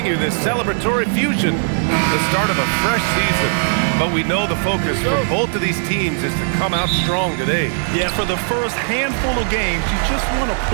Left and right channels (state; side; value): silent; left; 67 dB below the other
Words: you this celebratory fusion, the start of a fresh season. But we know the focus for both of these teams is to come out strong today. Yeah, for the first handful of games, you just want to